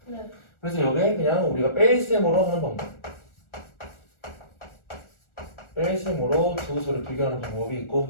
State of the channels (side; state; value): right; late; 1.4 ms